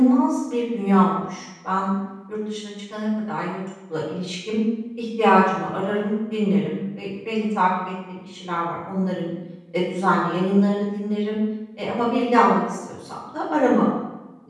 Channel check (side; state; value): both; identical; correlation 1.00